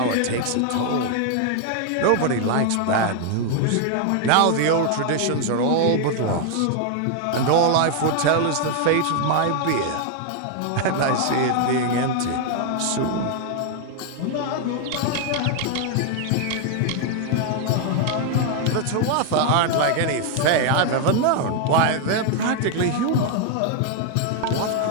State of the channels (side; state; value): both; different; correlation 0.00